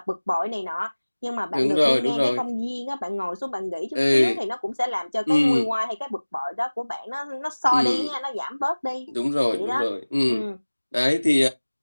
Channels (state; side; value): inverted; both; correlation -1.00